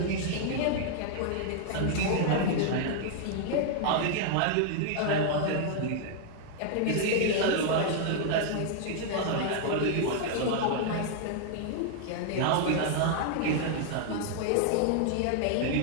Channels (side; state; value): both; different; correlation 0.00